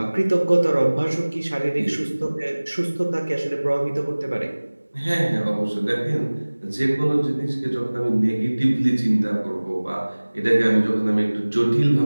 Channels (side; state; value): both; inverted; correlation -1.00